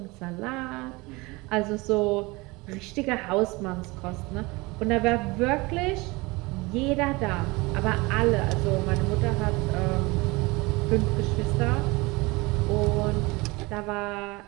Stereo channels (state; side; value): quieter; left; 24.0 dB